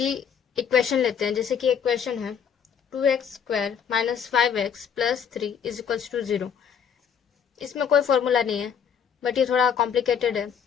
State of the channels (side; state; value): right; quieter; 7.5 dB